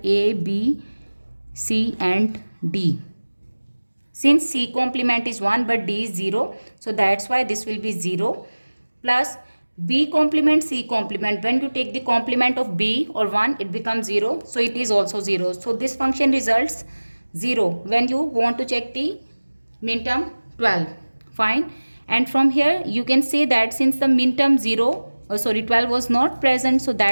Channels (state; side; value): inverted; both; correlation -1.00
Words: A, B, C and D. Since C complement is 1 but D is 0, so that's why this will be 0 plus B complement C complement. When you take the complement of B or 1, it becomes 0, so it is also 0. So this function results 0 when you want to check the min term 12. Fine. And from here you can say that since the min term 0 12 was not present, so